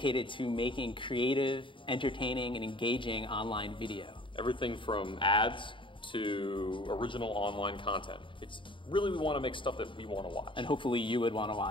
to making creative, entertaining, and engaging online video. Everything from ads to original online content. It's really, we want to make stuff that we want to watch. And hopefully you would want to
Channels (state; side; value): late; right; 0.24 ms